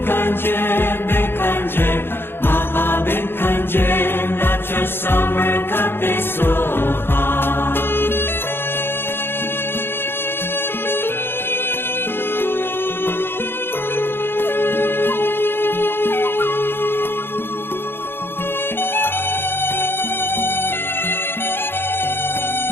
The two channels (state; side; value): late; right; 0.11 ms